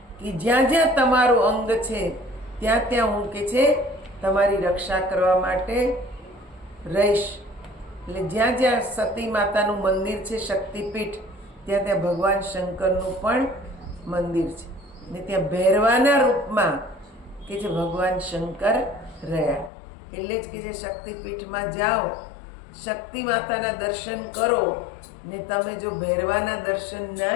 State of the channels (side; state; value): right; drops out; at 19.7 s